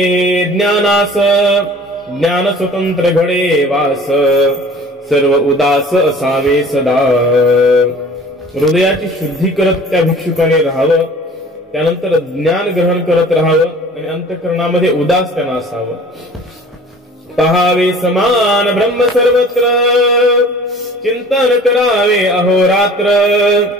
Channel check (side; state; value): both; normal; correlation 0.46